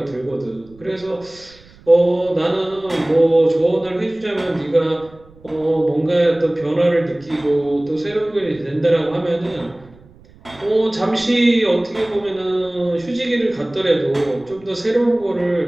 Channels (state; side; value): noise; right; rumble, 25 dB below the sound